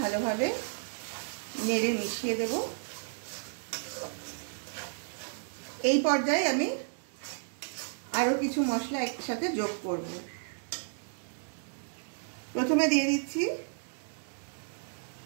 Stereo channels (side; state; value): left; silent; digital silence